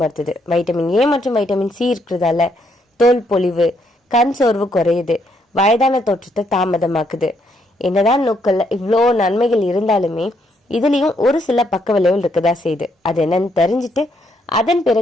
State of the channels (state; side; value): normal; both; correlation 0.73